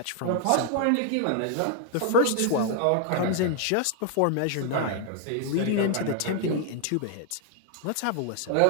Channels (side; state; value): both; different; correlation 0.00